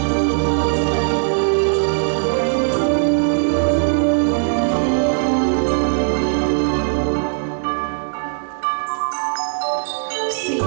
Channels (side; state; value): left; silent; 67 dB below the other